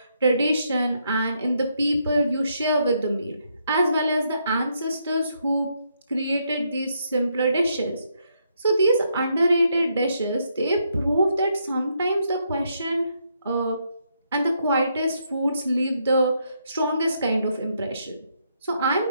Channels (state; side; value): inverted; both; correlation -0.76